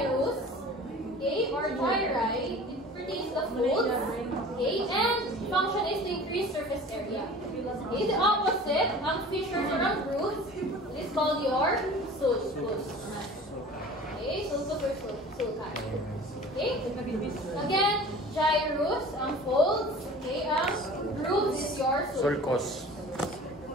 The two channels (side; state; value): both; normal; correlation 0.42